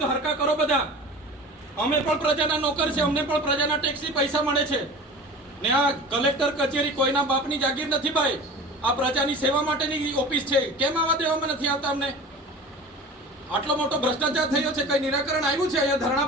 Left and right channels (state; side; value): normal; both; correlation 0.37